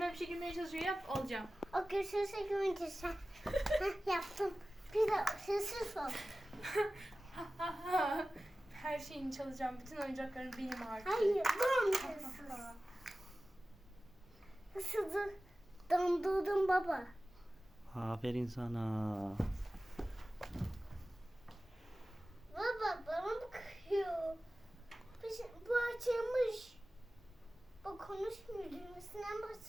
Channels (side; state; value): both; normal; correlation 0.96